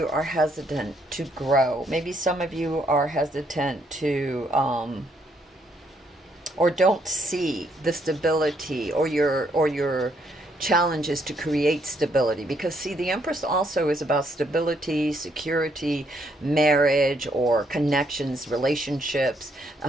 are hesitant to grow. Maybe some of you are hesitant to, or don't see the stability or your challenges to create stability. Because see, the Empress also is about stability, security, marriage or connections, relationships,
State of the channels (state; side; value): normal; both; correlation 0.72